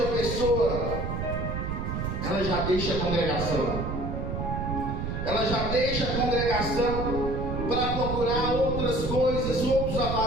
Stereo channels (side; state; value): right; noise; rumble, 3 dB below the sound